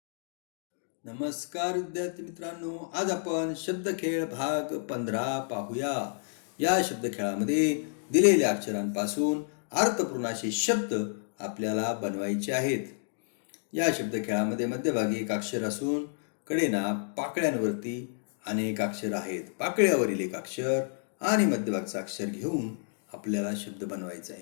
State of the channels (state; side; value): silent; right; digital silence